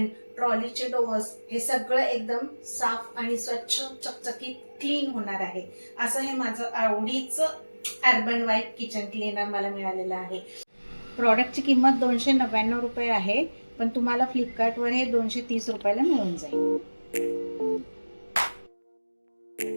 ट्रॉलीचे डोअर्स, हे सगळं एकदम साफ आणि स्वच्छ चकचकीत क्लीन होणार आहे. असं हे माझं आवडीचं अर्बन वाईट किचन क्लीनर मला मिळालेलं आहे. प्रॉडक्टची किंमत 299 रुपये आहे, पण तुम्हाला फ्लिपकार्टवर हे 230 रुपयाला मिळून जाईल.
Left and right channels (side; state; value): both; inverted; correlation -1.00